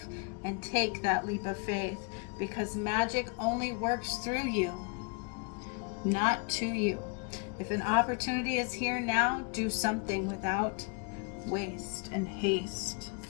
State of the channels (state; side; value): quieter; right; 34.2 dB